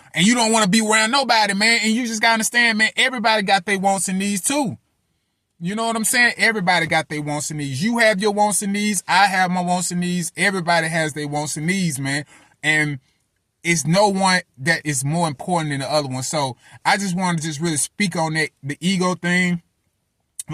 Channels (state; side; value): identical; both; correlation 1.00